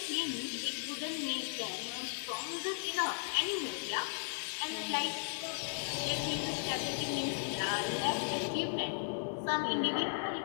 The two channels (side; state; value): right; silent; digital silence